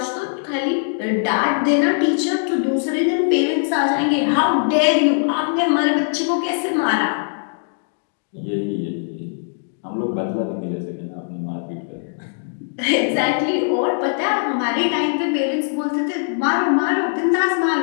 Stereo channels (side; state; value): right; silent; digital silence